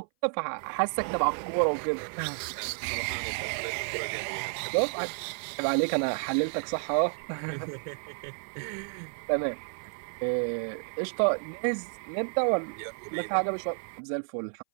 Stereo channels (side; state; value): left; silent; 57 dB below the other